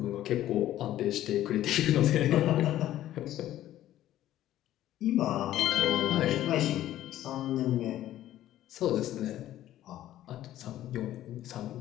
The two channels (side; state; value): right; quieter; 13.3 dB